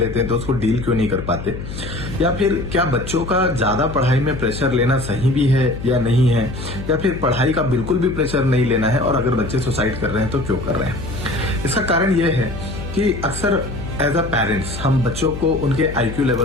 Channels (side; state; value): left; noise; hum, 9 dB below the sound